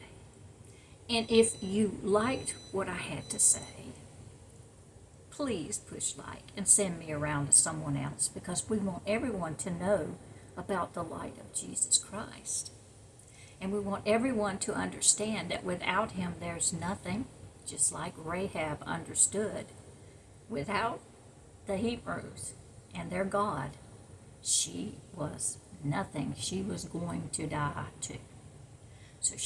And if you liked what I had to say, please push like and send me around to someone else, because we want everyone to know about the light of Jesus Christ. And we want everyone to understand that without Him there's nothing, just like Rahab understood. Without the Hebrews and their God, she was nothing. She was going to die too. So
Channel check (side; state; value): both; identical; correlation 1.00